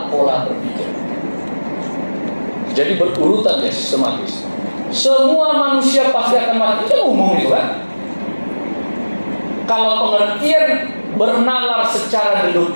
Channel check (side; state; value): both; inverted; correlation -1.00